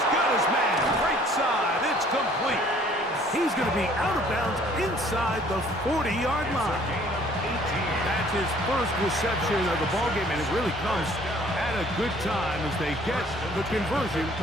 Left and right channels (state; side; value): normal; both; correlation 0.57